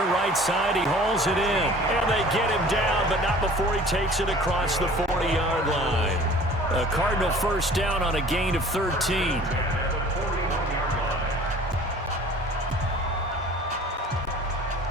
right side. He hauls it in. And they get him down, but not before he takes it across the 40-yard line. A Cardinal 1st down on a gain of 13.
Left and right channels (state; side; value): normal; both; correlation 0.47